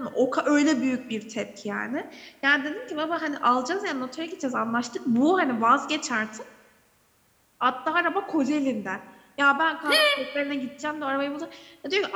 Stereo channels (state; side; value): identical; both; correlation 1.00